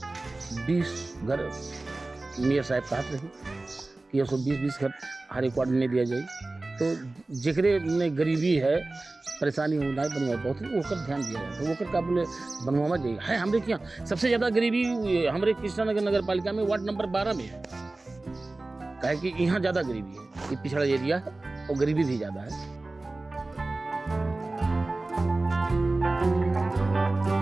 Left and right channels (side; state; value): left; quieter; 3.1 dB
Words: घर मेयर साहब कहते रहे कि 120 घर हर एक वार्ड में दिया जाए। तो जेकरे में गरीबी है, परेशानी हो ना बनवा बहुत ओकर ध्यान दिया जाए, तो ओकर का बोले बनवावा जाइए है। हमारे यहाँ सबसे ज़्यादा गरीबी हमारे कृष्णा नगर नगर पालिका में वार्ड नंबर 12 में है, कहे कि यहाँ ज़्यादा गरीबी है, ये पिछड़ा एरिया है और गरीबी भी ज़्यादा है।